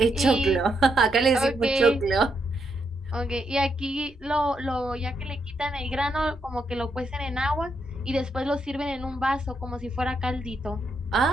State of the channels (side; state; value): both; normal; correlation 0.79